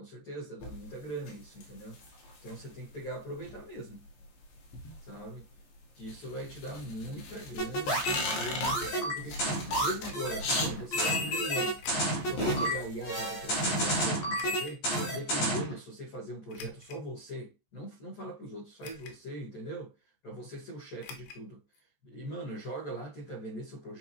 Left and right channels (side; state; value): right; late; 14 ms